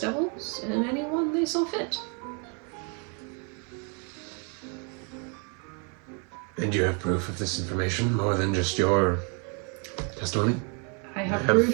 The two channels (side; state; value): left; quieter; 37.0 dB